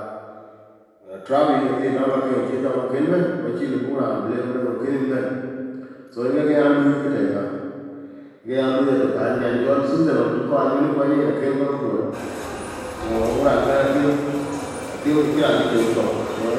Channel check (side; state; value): both; identical; correlation 1.00